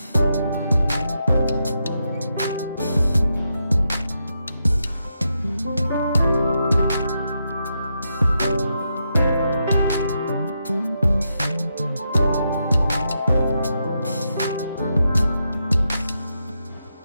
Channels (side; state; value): both; inverted; correlation -0.84